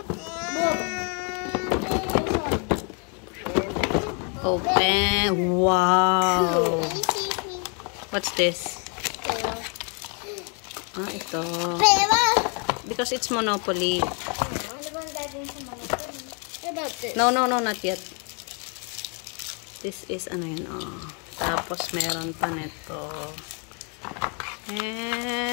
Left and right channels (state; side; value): quieter; right; 37.3 dB